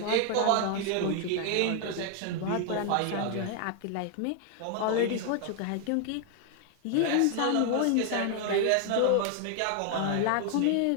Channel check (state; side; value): different; both; correlation 0.00